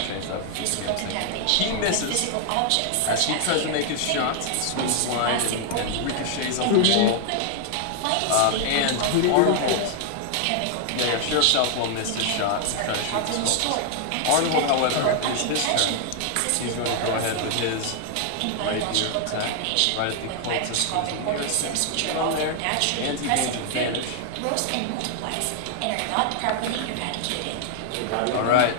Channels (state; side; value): different; both; correlation 0.00